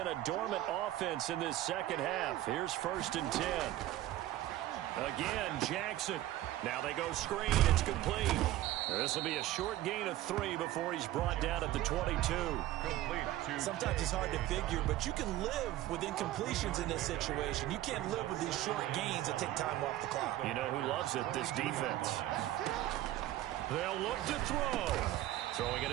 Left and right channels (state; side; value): quieter; left; 14.6 dB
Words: a dormant offense in this second half. Here's 1st and 10. Again, Jackson. Now they go screen. It's complete. This will be a short gain of 3 before he's brought down at the 22. Sometimes it's hard to figure, but you can live with incompletions in this situation. You can't live with these short gains that take time off the clock. You know who loves it? This defense. They'll look to throw. Throwing